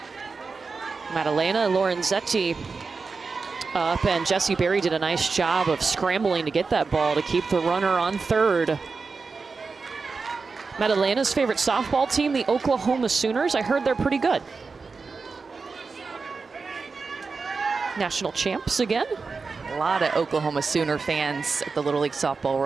Maddalena Lorenzetti up, and Jessie Berry did a nice job of scrambling to get that ball to keep the runner on third. Maddalena's favorite softball team, the Oklahoma Sooners. I heard they're pretty good. National champs again. A lot of Oklahoma Sooner fans at the Little League Softball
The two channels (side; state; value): left; quieter; 4.5 dB